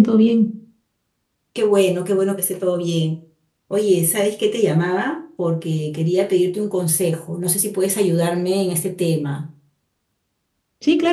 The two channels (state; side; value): identical; both; correlation 1.00